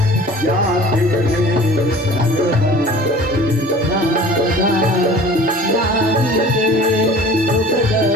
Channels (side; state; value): both; normal; correlation 0.44